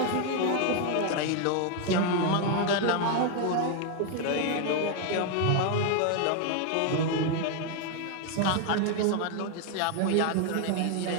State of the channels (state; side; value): different; both; correlation 0.01